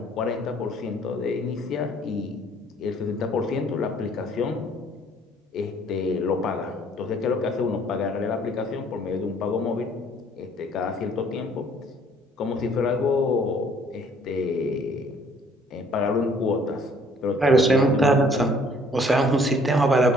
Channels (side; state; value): both; normal; correlation 0.59